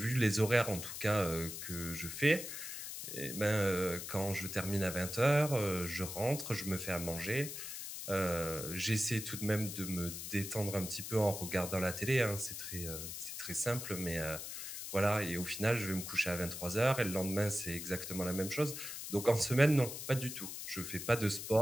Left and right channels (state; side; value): noise; left; hiss, 7 dB below the sound